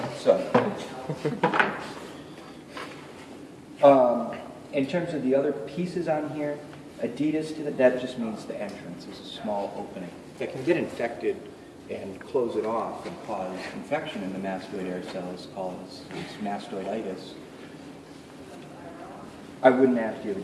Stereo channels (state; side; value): identical; both; correlation 1.00